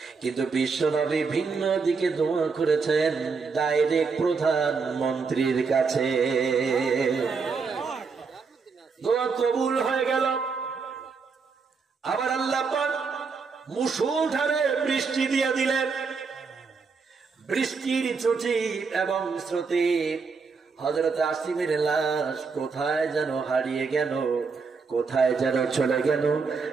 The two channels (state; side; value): quieter; left; 5.0 dB